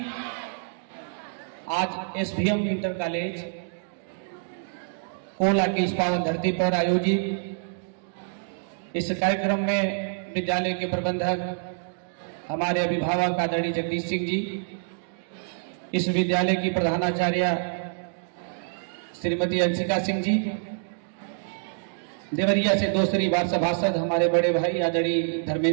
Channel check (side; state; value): left; silent; digital silence